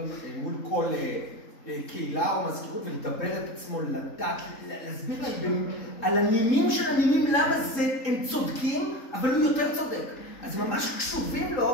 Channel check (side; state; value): right; late; 3.8 ms